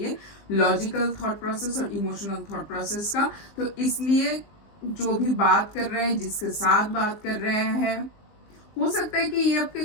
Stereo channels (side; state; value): right; late; 19 ms